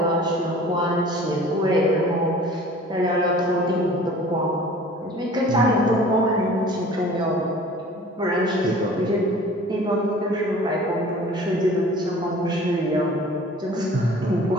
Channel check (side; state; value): both; normal; correlation 0.46